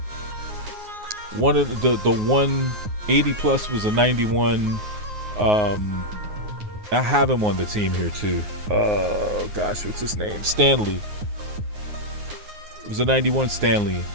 one of the 180 plus was a 91. I have him on the team here too. Oh gosh, what's his name? Stanley. It was a 91 Stanley,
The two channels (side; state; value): left; late; 9.5 ms